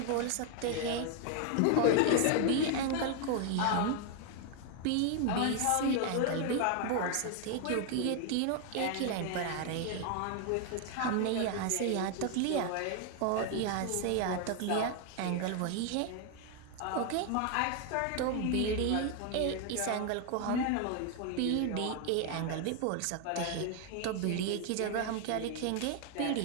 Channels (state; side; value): different; both; correlation 0.00